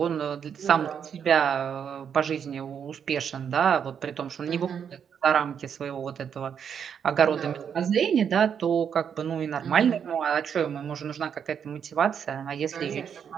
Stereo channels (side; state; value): left; quieter; 7.7 dB